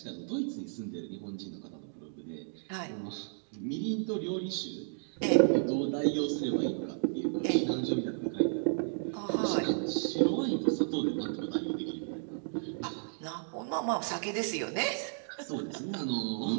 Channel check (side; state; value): left; silent; digital silence